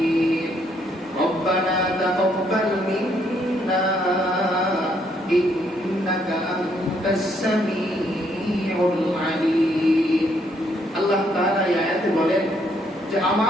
ربنا تقبل منا إنك أنت السميع العليم আল্লাহ তাআলা এই আয়াতে বলেন যে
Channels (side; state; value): both; normal; correlation 0.71